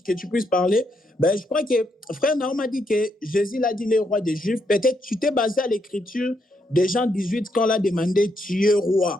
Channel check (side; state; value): both; normal; correlation 0.78